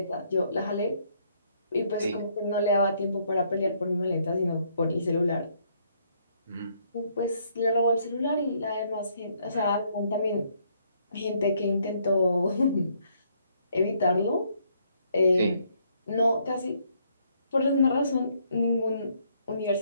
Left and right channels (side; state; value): both; inverted; correlation -0.69